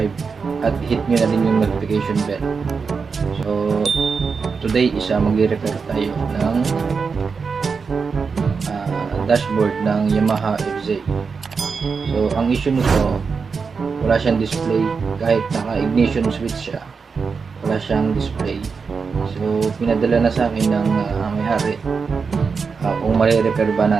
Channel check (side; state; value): left; quieter; 5.3 dB